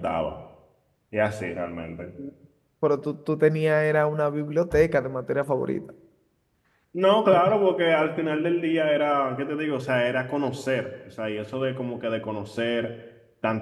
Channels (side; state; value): both; identical; correlation 1.00